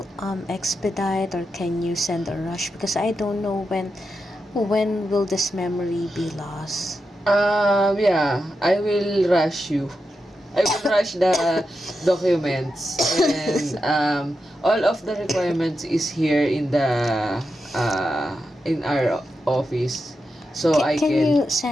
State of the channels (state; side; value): normal; both; correlation 0.88